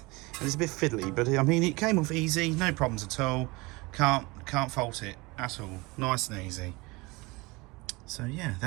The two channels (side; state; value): left; quieter; 24.1 dB